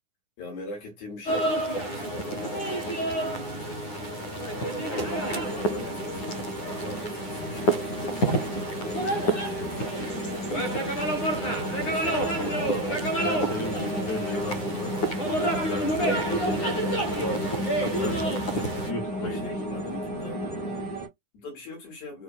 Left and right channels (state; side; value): late; right; 9.7 ms